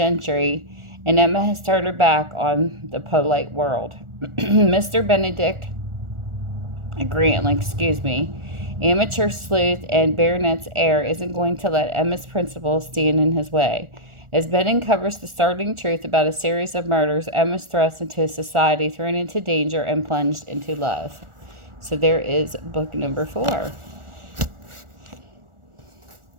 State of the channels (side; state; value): left; late; 1.4 ms